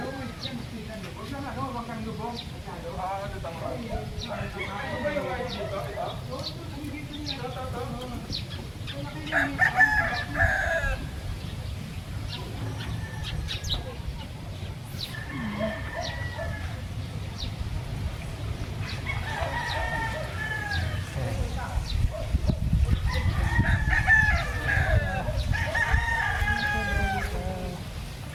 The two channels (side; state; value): both; identical; correlation 1.00